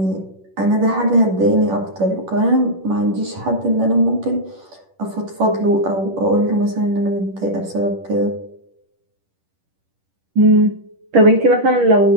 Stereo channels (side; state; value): left; late; 10 ms